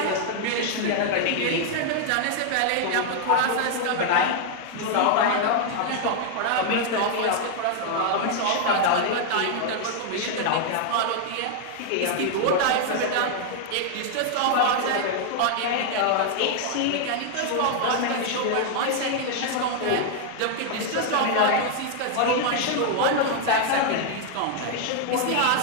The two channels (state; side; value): different; both; correlation 0.00